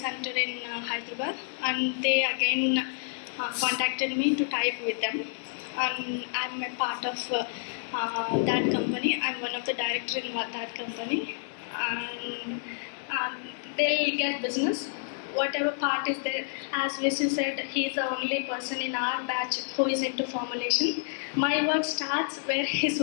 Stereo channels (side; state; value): right; silent; 58 dB below the other